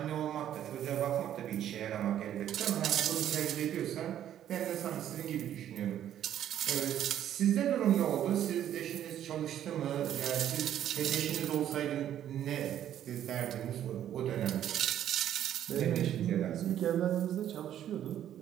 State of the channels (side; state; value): left; quieter; 10.9 dB